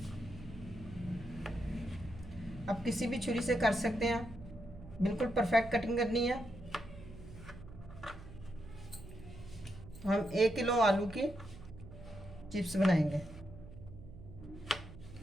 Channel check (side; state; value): right; noise; hum, 15 dB below the sound